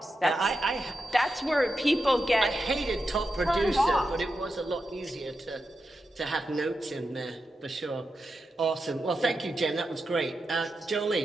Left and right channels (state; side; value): normal; both; correlation 0.89